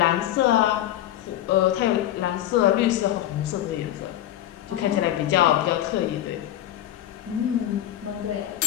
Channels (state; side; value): quieter; right; 12.8 dB